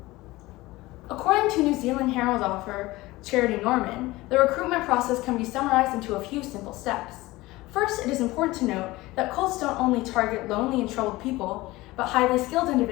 According to New Zealand Herald author Charity Norman, the recruitment process can be summarized into a few simple steps. First, it is important to note that cults don't only target lonely and troubled people, but highly skilled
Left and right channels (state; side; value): quieter; right; 19.5 dB